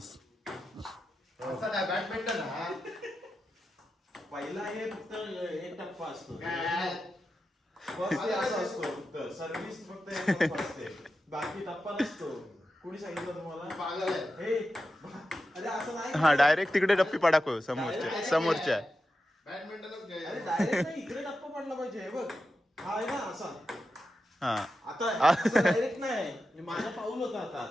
बॅडमिंटन पहिला हे फक्त एक टप्पा असतो. सर्व्हिस फक्त एक टप्पा असते, बाकी टप्पा नसतो. कोणी सांगितलं तुम्हाला? अरे असं नाही. हा डायरेक्ट तिकडे डप्पी पडाको समोरच्या. बॅडमिंटनच अरे डायरेक्ट नाही, इकडे टप्पा पडला पाहिजे. हे बघ हा आहे ना असा. हा आता डायरेक्ट नाही, माझा पाऊल होता आता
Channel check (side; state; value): both; normal; correlation 0.90